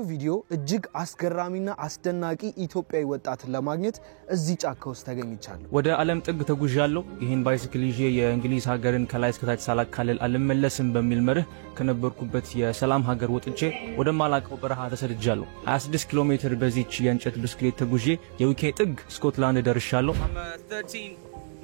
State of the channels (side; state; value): left; silent; digital silence